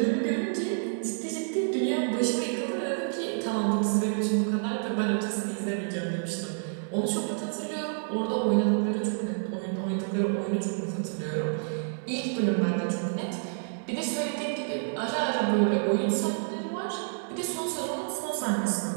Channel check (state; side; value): silent; left; 58 dB below the other